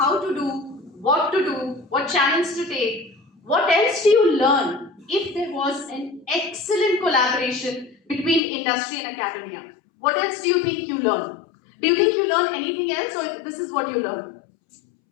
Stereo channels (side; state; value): right; drops out; at 8.4 s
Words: to do, what challenge to take, what else do you learn if there was an excellent collaboration between industry and academia? What else do you think you learn? Do you think you learn anything else or this is what you learn?